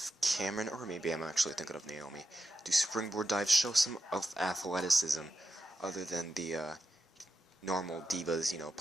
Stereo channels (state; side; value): normal; both; correlation 0.87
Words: Cameron, or maybe I'm actually thinking of Naomi, do springboard dives, show some of athleticism other than the normal Divas,